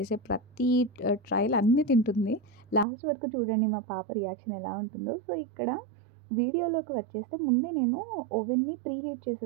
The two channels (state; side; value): drops out; left; at 2.9 s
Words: ప్రతి ట్రయల్ అన్నీ తింటుంది. లాస్ట్ వరకు చూడండి మా పాప రియాక్షన్ ఎలా ఉంటుందో. సో ఇక్కడ వీడియోలోకి వచ్చేస్తే ముందే నేను ఓవెన్ని ప్రీ హీట్